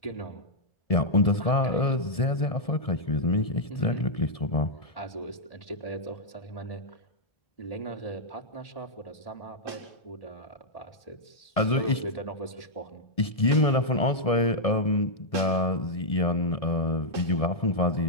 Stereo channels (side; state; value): right; late; 1.7 ms